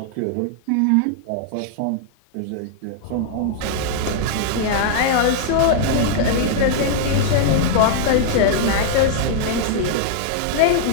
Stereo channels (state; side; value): different; both; correlation -0.01